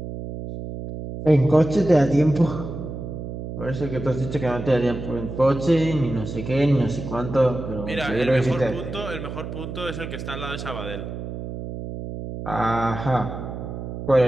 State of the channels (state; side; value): noise; right; hum, 8 dB below the sound